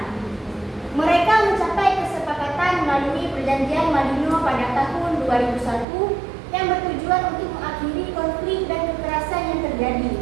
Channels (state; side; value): drops out; left; at 5.9 s